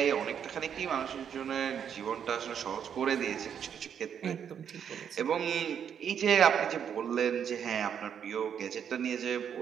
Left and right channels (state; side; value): quieter; left; 8.2 dB